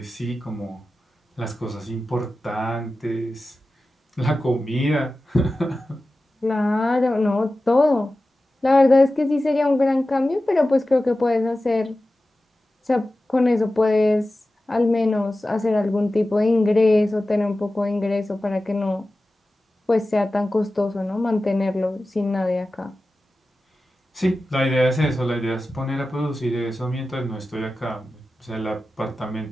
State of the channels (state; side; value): normal; both; correlation 0.95